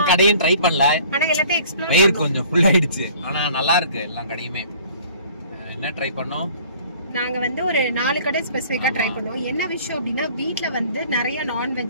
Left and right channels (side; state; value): both; inverted; correlation -0.51